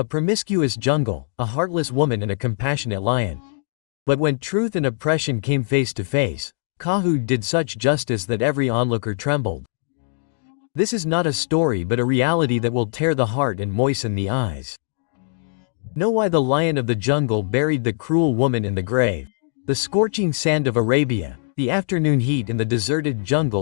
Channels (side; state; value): right; silent; digital silence